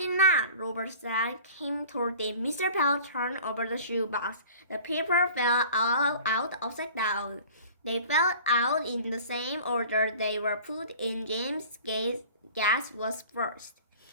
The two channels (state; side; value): inverted; both; correlation -0.45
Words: not," Robert said. Cam told him. Mr. Bell turned over the shoebox. The paper fell out upside down. They fell out in the same order they were put in. James' guess was first.